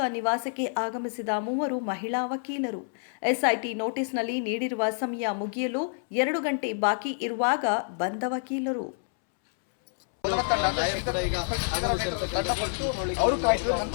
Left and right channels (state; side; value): silent; right; 59 dB below the other